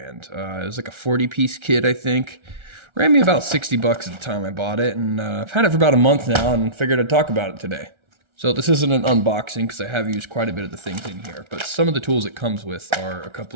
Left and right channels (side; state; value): left; late; 1.3 ms